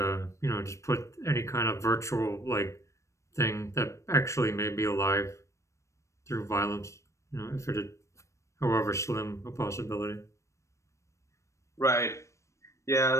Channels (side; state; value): right; late; 0.15 ms